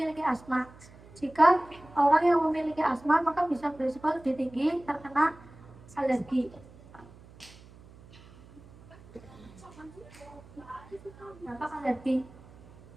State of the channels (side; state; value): right; noise; hum, 22 dB below the sound